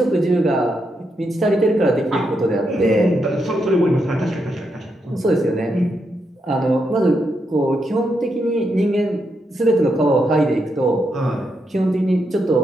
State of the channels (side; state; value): both; normal; correlation 0.82